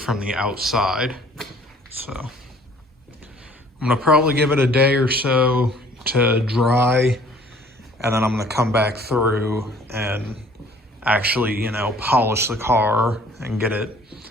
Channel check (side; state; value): both; normal; correlation 0.54